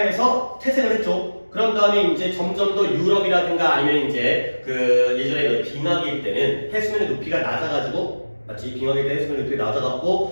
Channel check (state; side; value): inverted; both; correlation -1.00